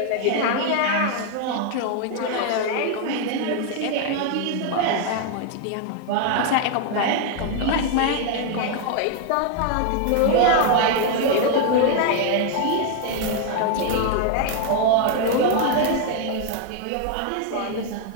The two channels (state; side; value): different; both; correlation 0.00